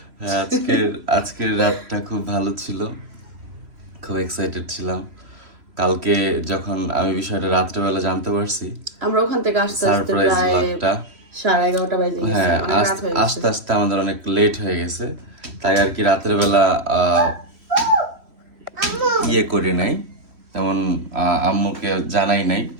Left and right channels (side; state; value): left; late; 3.1 ms